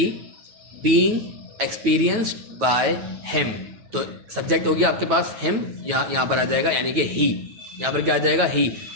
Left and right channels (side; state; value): left; late; 9.2 ms